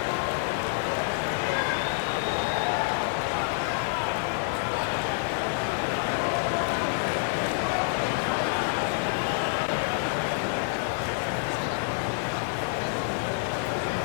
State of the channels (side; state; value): right; silent; digital silence